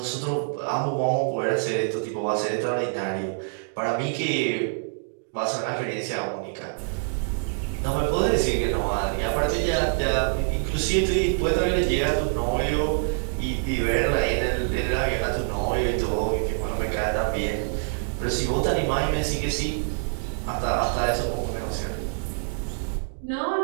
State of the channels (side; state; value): left; silent; digital silence